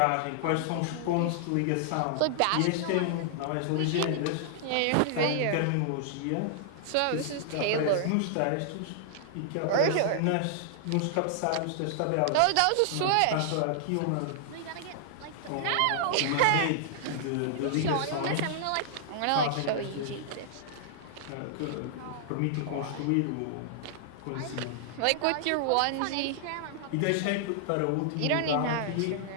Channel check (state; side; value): different; both; correlation -0.01